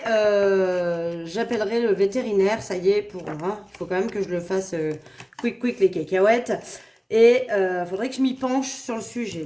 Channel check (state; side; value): identical; both; correlation 1.00